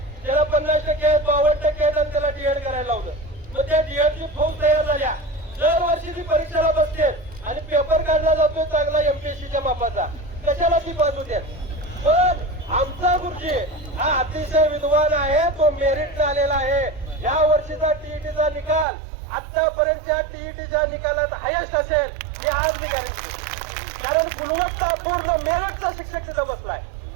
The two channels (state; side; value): drops out; left; at 18.9 s